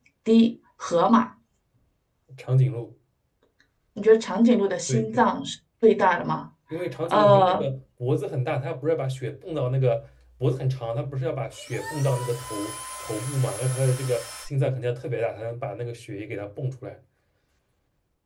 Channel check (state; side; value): identical; both; correlation 1.00